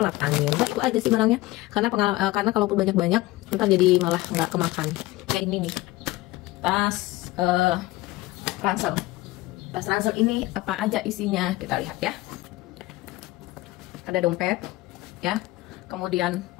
angin. Nah, itu aja sih barangnya. Karena kalaupun banyak-banyak, ntar jadi malah nggak kemakan. Ya ini nih, tas ransel. Tas ransel ini apa aja isinya? Kita lihat ya. Ada dompet, ya. Kemudian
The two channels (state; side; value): quieter; right; 18.7 dB